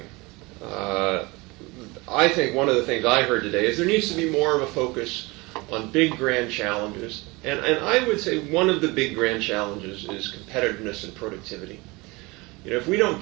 I think one of the things I heard today is there needs to be more of a focus on big grand challenges. And I would say one of the big grand challenges is competitiveness and productivity. If we don't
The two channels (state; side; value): quieter; left; 24.3 dB